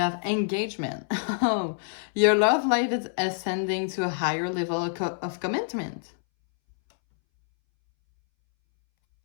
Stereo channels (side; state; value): right; silent; 61 dB below the other